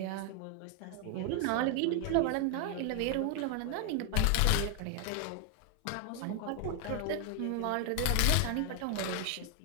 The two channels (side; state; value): both; different; correlation 0.00